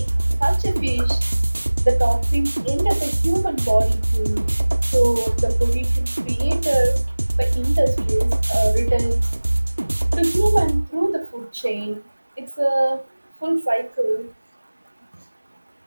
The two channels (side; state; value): both; inverted; correlation -1.00